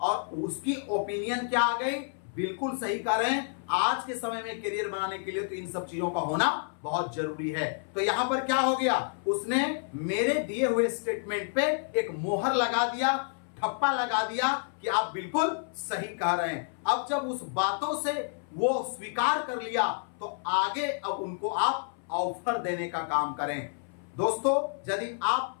उसकी ओपिनियन क्या आ गई, बिल्कुल सही कह रहे हैं। आज के समय में करियर बनाने के लिए तो इन सब चीजों का होना बहुत जरूरी है। तो यहां पर क्या हो गया, उसने मेरे दिए हुए स्टेटमेंट पे एक मोहर लगा दिया, ठप्पा लगा दिया कि आप बिल्कुल सही कह रहे हैं। अब जब उस बातों से वो स्वीकार कर लिया तो आगे अब उनको आप ऑफर देने का काम करें। दोस्तों, यदि आप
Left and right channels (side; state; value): right; silent; 58 dB below the other